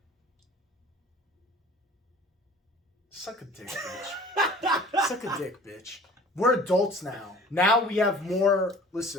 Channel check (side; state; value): both; normal; correlation 0.47